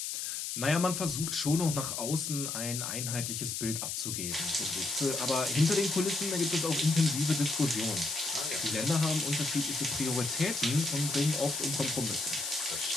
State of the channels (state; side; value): noise; left; hiss, 3 dB below the sound